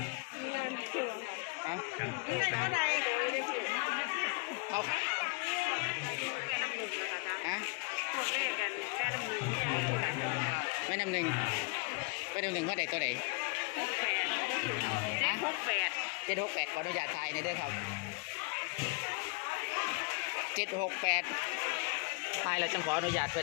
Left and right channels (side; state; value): right; quieter; 32.0 dB